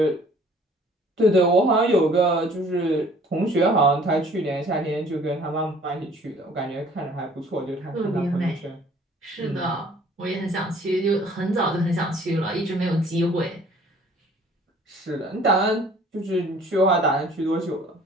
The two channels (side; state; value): both; normal; correlation 0.54